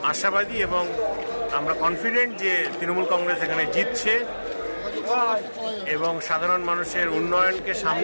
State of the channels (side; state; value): both; inverted; correlation -1.00